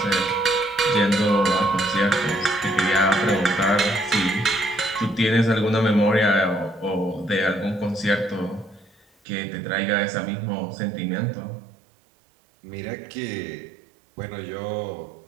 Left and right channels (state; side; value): drops out; left; at 9.1 s